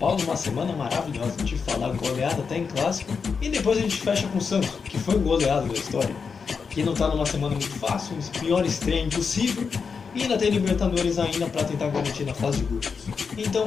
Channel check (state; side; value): quieter; right; 5.6 dB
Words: uma semana maravilhosa, a gente falar goleada até em clássico. E depois a gente fecha com o Santos, que foi o goleado da história, que não tá numa semana muito fácil, o pior estreia impossível. E ainda tem Libertadores ainda para tentar garantir na fase de grupos.